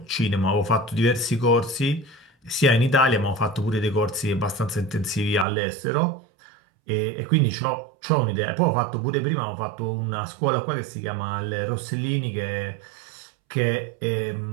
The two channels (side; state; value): left; drops out; at 5.5 s